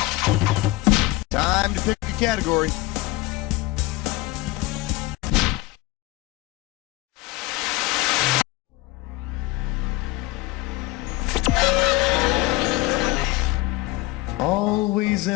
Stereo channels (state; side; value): quieter; right; 19.1 dB